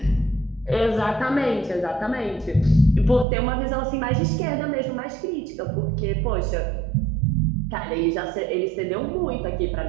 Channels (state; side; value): drops out; left; at 3.2 s